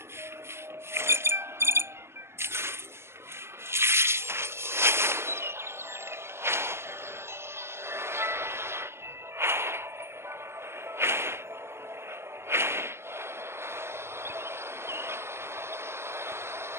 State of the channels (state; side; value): late; left; 0.12 ms